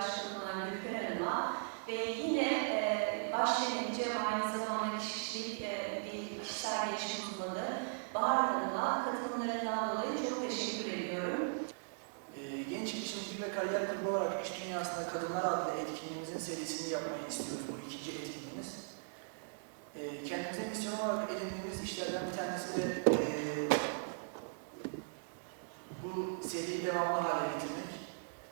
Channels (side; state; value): left; silent; digital silence